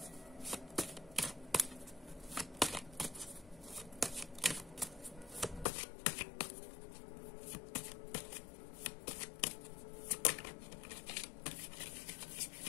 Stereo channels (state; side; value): drops out; right; at 5.7 s